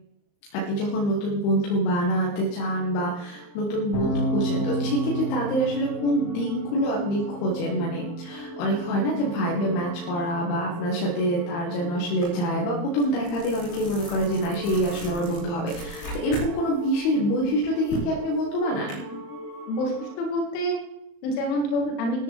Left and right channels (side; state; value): right; late; 35 ms